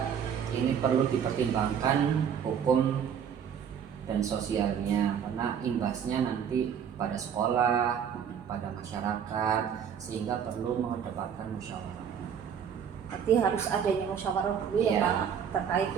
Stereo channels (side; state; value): left; quieter; 7.9 dB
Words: ini perlu dipertimbangkan hukum dan sosialnya, karena imbasnya nanti pada sekolah, pada masyarakat, sehingga perlu mengedepankan musyawarah. Berarti harus adanya musyawarah dulu ya Pak, terkait